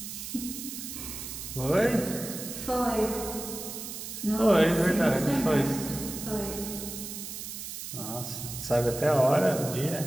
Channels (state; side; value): noise; right; hiss, 8 dB below the sound